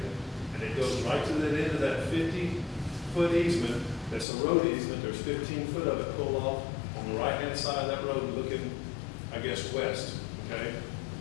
And it goes right to the end of that 50-foot easement. That's a road easement. There's 15 foot of it pulled off on the right-hand side of that road looking, I guess, west, okay?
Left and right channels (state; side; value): drops out; right; at 4.2 s